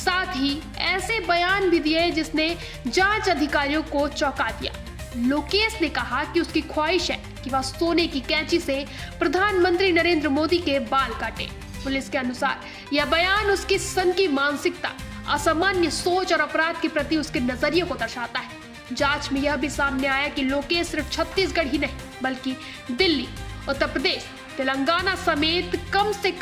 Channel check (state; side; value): identical; both; correlation 1.00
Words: ही ऐसे बयान भी दिए जिसने जांच अधिकारियों को चौंका दिया। लोकेश ने कहा कि उसकी ख्वाहिश है कि वह सोने की कैंची से प्रधानमंत्री नरेंद्र मोदी के बाल काटे। पुलिस के अनुसार यह बयान उसकी सनकी मानसिकता, असामान्य सोच और अपराध के प्रति उसके नजरिए को दर्शाता है। जांच में यह भी सामने आया कि लोकेश सिर्फ छत्तीसगढ़ ही नहीं, बल्कि दिल्ली, उत्तर प्रदेश, तेलंगाना समेत कम से